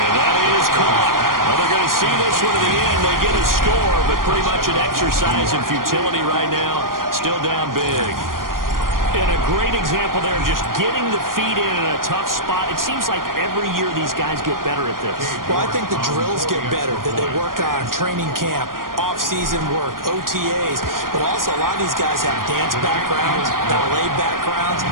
that is caught. Well, they're going to see this one to the end. They get a score, but pretty much an exercise in futility right now. Still down big. And a great example there of just getting the feet in a tough spot. It seems like every year these guys get better at this. Well, I think the drills get better that they work on training camp, off-season work, OTAs. But also a lot of these guys have dance backgrounds, ballet backgrounds,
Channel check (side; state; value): left; late; 0.91 ms